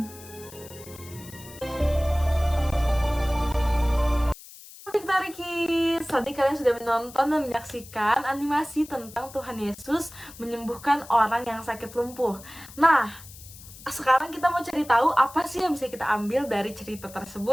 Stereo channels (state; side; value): noise; left; hiss, 18 dB below the sound